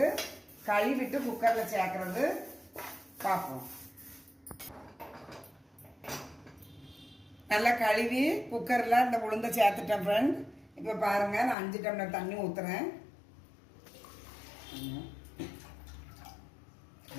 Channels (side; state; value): right; drops out; at 11.6 s